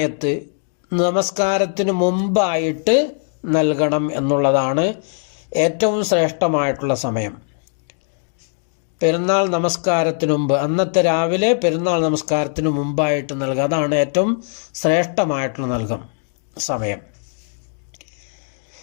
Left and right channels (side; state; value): right; silent; 66 dB below the other